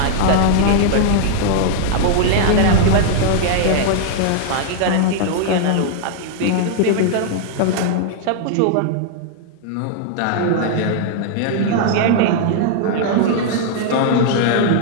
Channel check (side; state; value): both; different; correlation -0.01